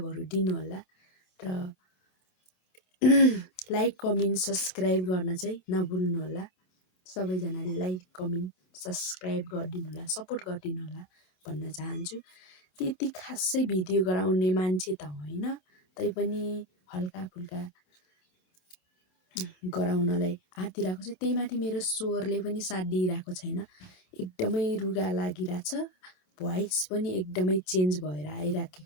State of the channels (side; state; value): right; late; 27 ms